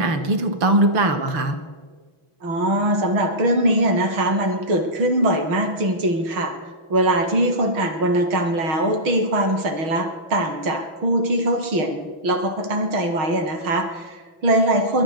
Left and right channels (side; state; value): left; late; 6.1 ms